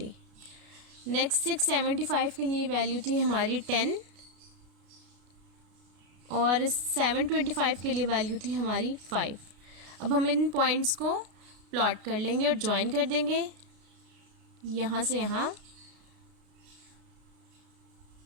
नेक्स्ट 675 के लिए वैल्यू थी हमारी 10 और 725 के लिए वैल्यू थी हमारी 5. अब हम इन पॉइंट्स को प्लॉट कर लेंगे और ज्वाइन कर देंगे यहाँ से यहाँ.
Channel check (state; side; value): late; left; 33 ms